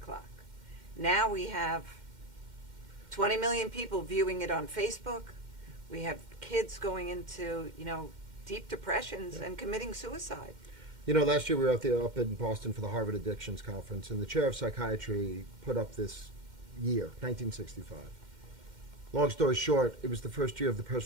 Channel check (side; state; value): left; late; 2.1 ms